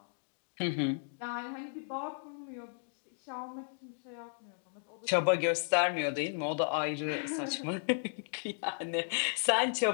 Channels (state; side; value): silent; right; digital silence